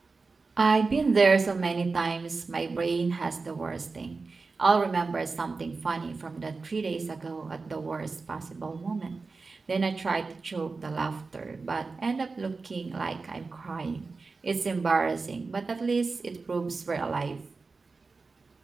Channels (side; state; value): left; quieter; 4.1 dB